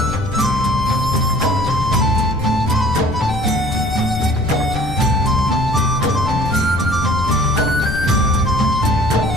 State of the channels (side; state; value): left; noise; rumble, 8 dB below the sound